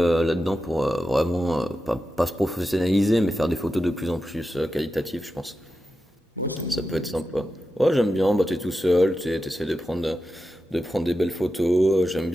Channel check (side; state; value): both; normal; correlation 0.90